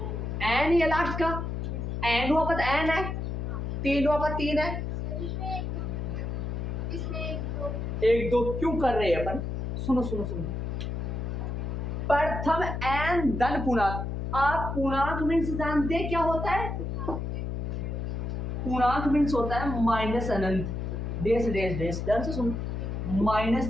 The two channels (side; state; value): left; noise; hum, 3 dB below the sound